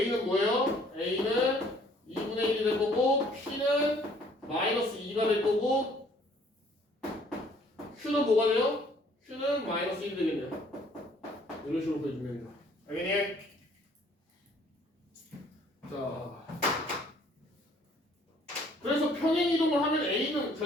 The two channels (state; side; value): normal; both; correlation 0.59